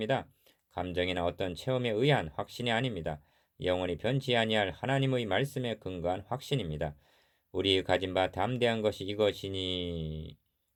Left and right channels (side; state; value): both; identical; correlation 1.00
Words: 감정이나 어떤 체험에 의한 확신이 아닙니다. 영원히 변치 아니할 하나님의 말씀에 근거한 확신입니다. 우리 가진 바 담대한 것이 이것이니